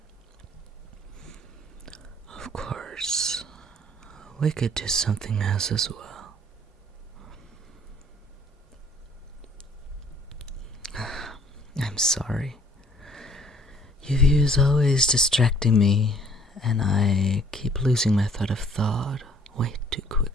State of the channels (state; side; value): normal; both; correlation 0.57